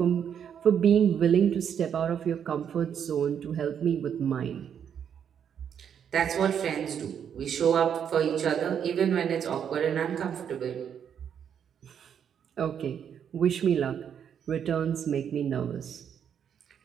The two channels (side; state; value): left; quieter; 8.3 dB